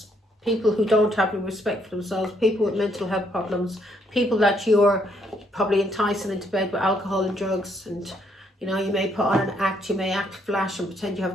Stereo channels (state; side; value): normal; both; correlation 0.71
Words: People who don't have the respect for themselves, people with mental health problems, people that you're probably enticing into bed with alcohol and drugs, and you know, you may put on an act, you may act flash and pretend you